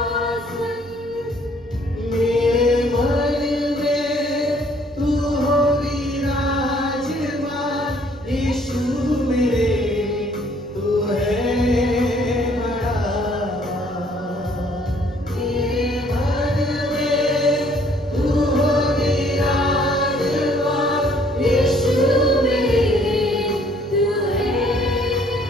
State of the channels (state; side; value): noise; right; hum, 25 dB below the sound